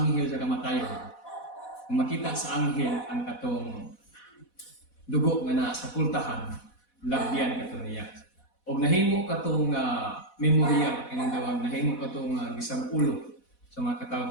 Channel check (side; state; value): right; late; 4.1 ms